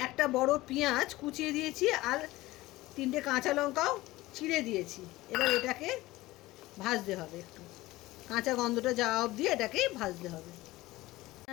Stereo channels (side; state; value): right; quieter; 18.5 dB